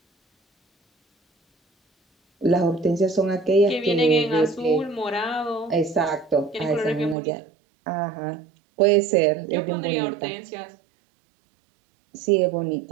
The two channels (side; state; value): left; drops out; at 7.2 s